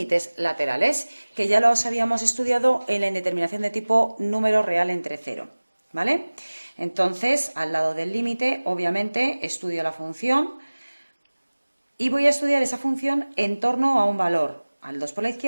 laterales, que ya los habíamos estudiado en la indeterminación de tipo número real entre 0, ¿vale? Entonces, al lado del límite, obviamente, estudio la función y voy a estudiar esa función en torno a un valor, al 2 por la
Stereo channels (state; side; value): inverted; both; correlation -1.00